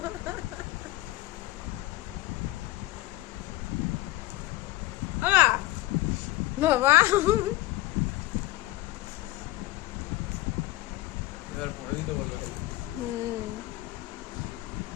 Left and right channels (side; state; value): right; quieter; 17.6 dB